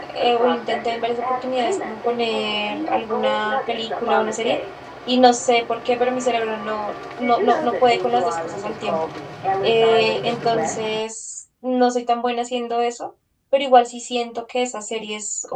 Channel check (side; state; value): both; identical; correlation 1.00